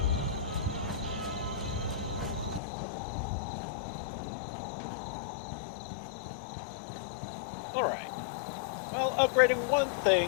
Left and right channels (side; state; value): right; drops out; at 2.6 s